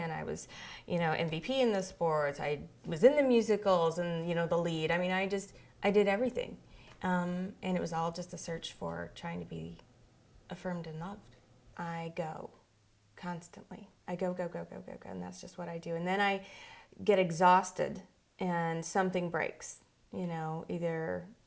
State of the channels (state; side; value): identical; both; correlation 1.00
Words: I was, MVP in the sports, I was in the musicals and, the lead. I did everything. And it was all just a search for trying to be affirmed and loved. I go constantly. I go, and that's just what I do. And then I get exhausted and something breaks, either